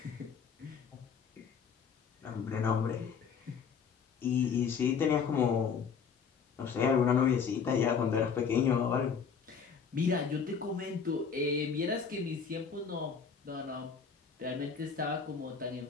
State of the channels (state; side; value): quieter; right; 6.3 dB